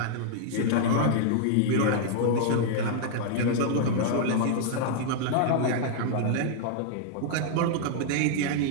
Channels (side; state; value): both; different; correlation -0.01